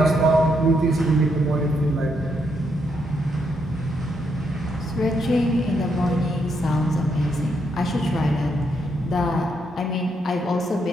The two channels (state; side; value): normal; both; correlation 0.77